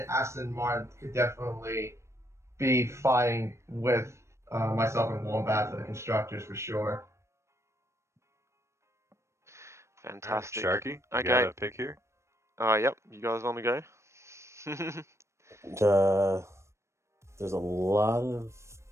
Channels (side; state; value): left; late; 0.13 ms